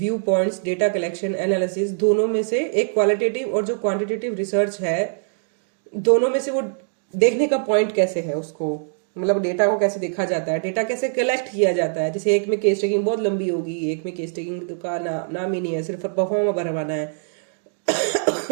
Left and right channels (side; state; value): left; silent; digital silence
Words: points, data collection, analysis, दोनों में से एक क्वालिटेटिव और जो क्वांटिटेटिव रिसर्च है दोनों में से वो देखने का पॉइंट कैसे है, उसको मतलब डेटा को कैसे देखा जाता है, डेटा कैसे कलेक्ट किया जाता है। जैसे एक में केस टेकिंग बहुत लंबी होगी, एक में केस टेकिंग का नाम ही नहीं है, सिर्फ परफॉर्मा भरवाना है